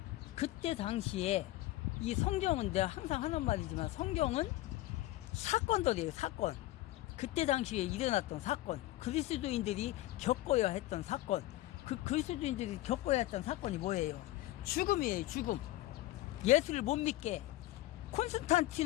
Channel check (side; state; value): right; quieter; 16.5 dB